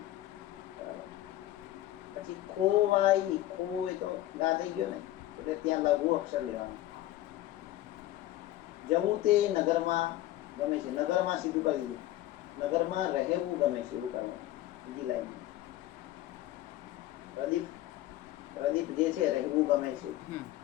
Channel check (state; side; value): quieter; right; 14.7 dB